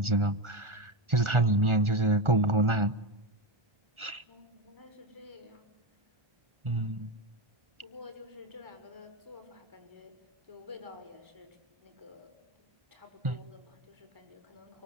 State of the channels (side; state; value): left; late; 1.4 ms